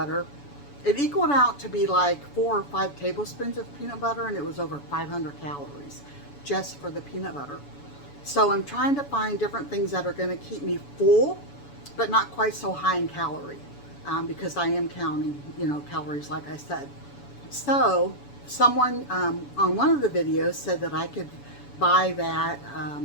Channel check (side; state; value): right; late; 7.0 ms